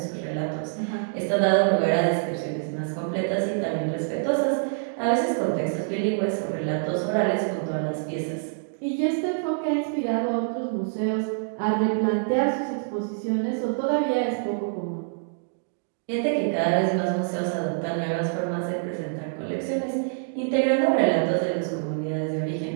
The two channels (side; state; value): left; silent; digital silence